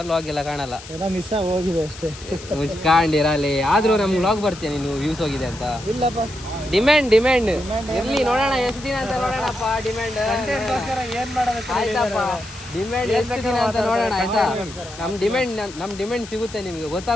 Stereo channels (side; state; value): left; noise; hiss, 16 dB below the sound